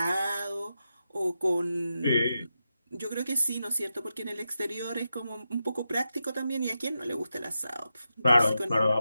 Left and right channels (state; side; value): inverted; both; correlation -0.88